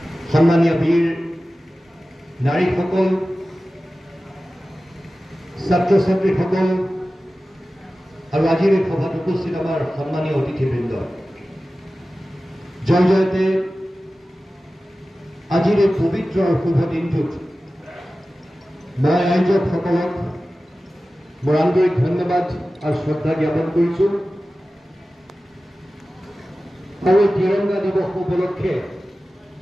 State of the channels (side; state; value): both; normal; correlation 0.95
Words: সন্মানীয় বীৰ নাৰীসকল, ছাত্ৰ ছাত্ৰীসকল আৰু আজিৰ এই সভাত উপস্থিত আমাৰ সন্মানীয় অতিথিবৃন্দ, জয় জয়তে আজিৰ এই পবিত্ৰ আৰু শুভ দিনটোত মই আয়োজকসকলক মোৰ আন্তৰিক ধন্যবাদ আৰু শ্ৰদ্ধা জ্ঞাপন কৰিছোঁ। আৰু এই তিৰংগা দিৱস উপলক্ষে